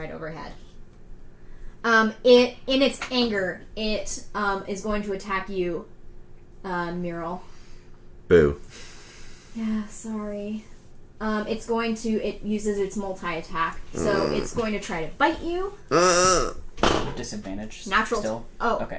overhead. In its anger, it is going to attack you, Mural. Boo. Yeah, sorry. It uses its multi-attack, so it's going to try to bite you. Disadvantage. Natural. Still. Oh, Okay.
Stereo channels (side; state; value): both; identical; correlation 1.00